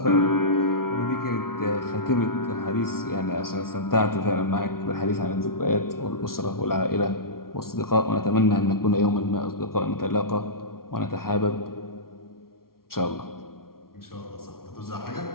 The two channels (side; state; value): right; late; 0.93 ms